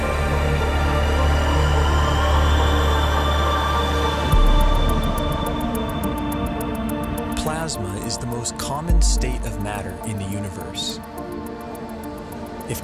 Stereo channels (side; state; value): both; identical; correlation 1.00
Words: Plasma is the most common state of matter in the universe. If